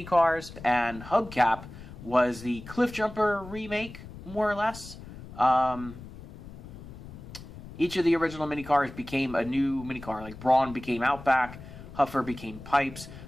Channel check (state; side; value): noise; left; rumble, 15 dB below the sound